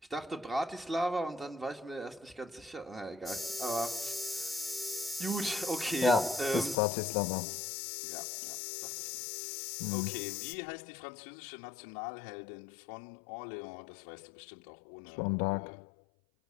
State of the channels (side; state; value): right; drops out; at 6.8 s